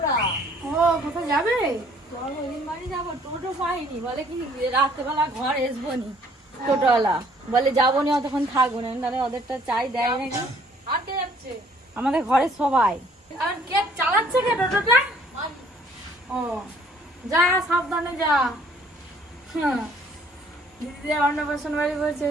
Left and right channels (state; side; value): normal; both; correlation 0.60